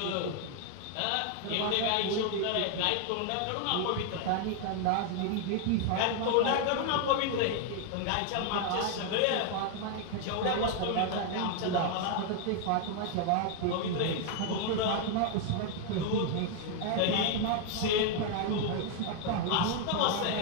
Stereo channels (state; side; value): different; both; correlation 0.00